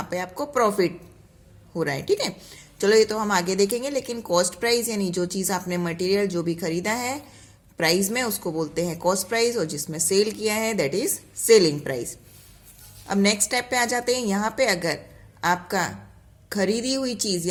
पे आपको प्रॉफिट हो रहा है, ठीक है. चलो ये तो हम आगे देखेंगे, लेकिन कॉस्ट प्राइस यानी जो चीज़ आपने मटेरियल जो भी खरीदा है प्राइस में, उसको बोलते हैं कॉस्ट प्राइस, और जिसमें सेल किया है दैट इज सेलिंग प्राइस. अब नेक्स्ट स्टेप पे आ जाते हैं. यहाँ पे अगर आपका खरीदी हुई चीज़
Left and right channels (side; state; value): both; identical; correlation 1.00